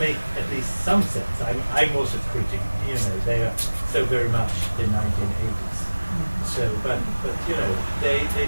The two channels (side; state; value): both; inverted; correlation -1.00